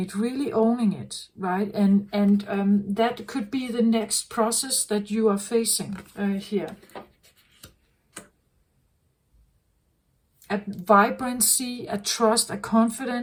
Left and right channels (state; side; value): identical; both; correlation 1.00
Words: really owning it, right? And that could be the next process that you are facing here. A vibrancy, a trust, a